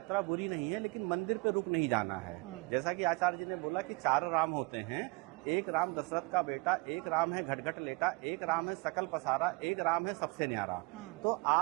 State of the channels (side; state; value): left; quieter; 27.7 dB